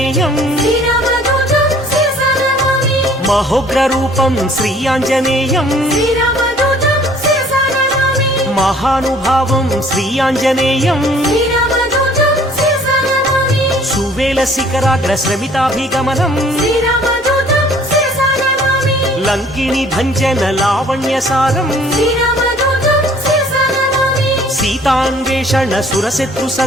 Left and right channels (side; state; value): both; normal; correlation 0.55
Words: మహోగ్రరూపం శ్రీ ఆంజనేయం మహానుభావం శ్రీ ఆంజనేయం సువేల శిఖరాగ్ర శ్రమితాభిగమనం లంకిని భంజన లావణ్యసారం సీతాన్వేషణ సురశత్రు